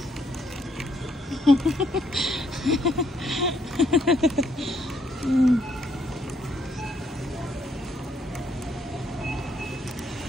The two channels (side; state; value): both; normal; correlation 0.72